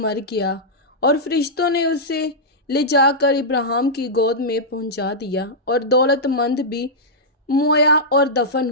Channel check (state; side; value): normal; both; correlation -0.10